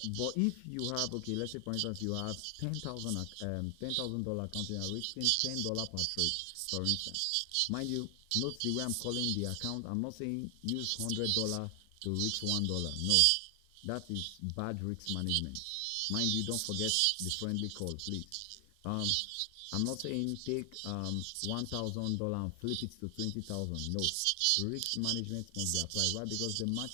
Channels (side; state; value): both; different; correlation 0.00